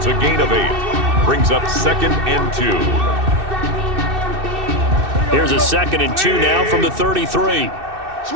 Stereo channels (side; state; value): left; late; 2.6 ms